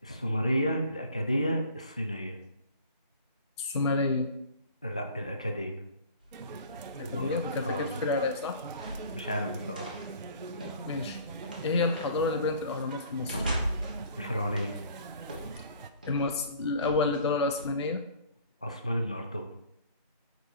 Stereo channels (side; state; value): both; inverted; correlation -0.49